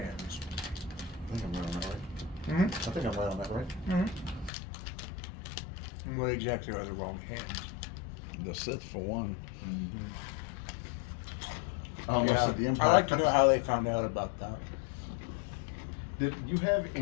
I think I'm right on that, right? Mm-hmm. I think I'm right on that, right? Mm-hmm. And what exactly are the wrong hands? The Sith, for one. Mm-hmm. I almost said the Empire. I'd like to know how they found out about that. Did you have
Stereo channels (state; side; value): drops out; right; at 4.5 s